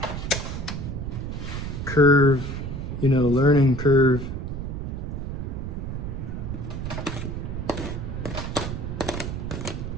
curve, you know, learning curve.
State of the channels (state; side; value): noise; right; rumble, 4 dB below the sound